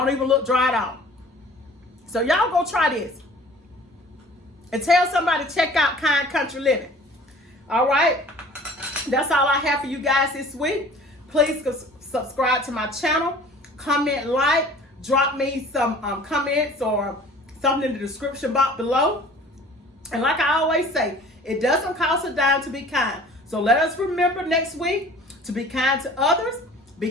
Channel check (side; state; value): both; normal; correlation 0.48